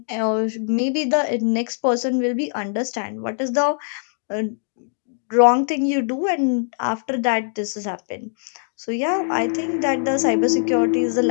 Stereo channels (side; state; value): right; silent; digital silence